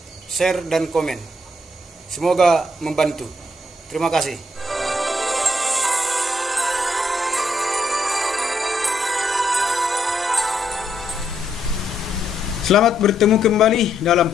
share, dan komen. Semoga membantu. Terima kasih. Selamat bertemu kembali dalam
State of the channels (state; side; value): normal; both; correlation 0.75